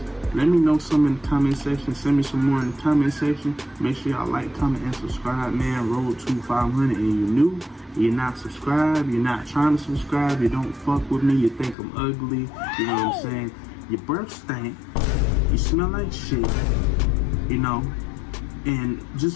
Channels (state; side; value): drops out; right; at 11.8 s